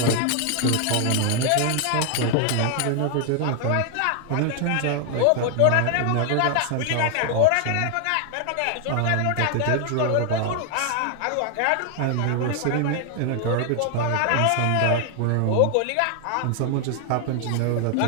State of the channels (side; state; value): both; different; correlation 0.00